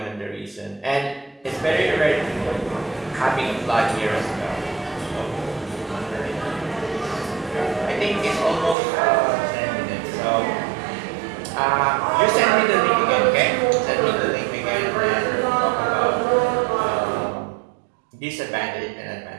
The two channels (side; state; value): left; drops out; at 8.8 s